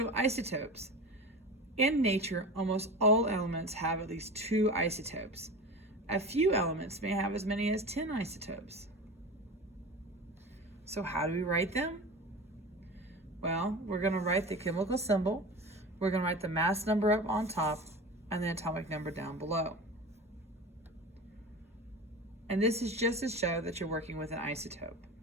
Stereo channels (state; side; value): normal; both; correlation 0.31